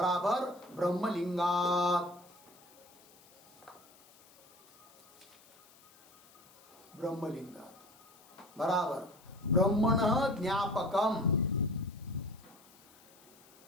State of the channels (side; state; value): left; noise; hiss, 26 dB below the sound